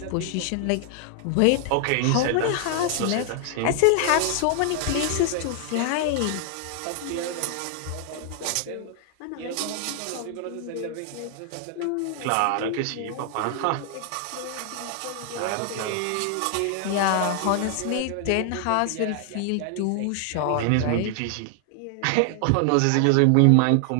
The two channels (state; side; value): different; both; correlation 0.00